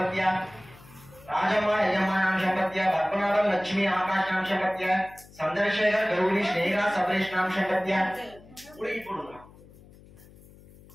राजम्मा यजम्मा नाम संपत्तिया पद्मनाभम लक्ष्मी आकाश नाम संपत्तिया चंद्रशेखर गौरी स्नेहा सबरेश नाम संपत्तिया पूरी पढ़ूंगा.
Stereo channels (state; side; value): noise; left; hum, 23 dB below the sound